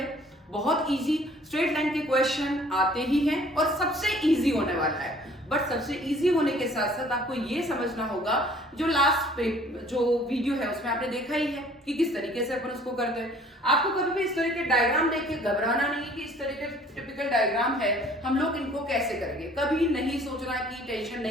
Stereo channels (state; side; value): normal; both; correlation 0.54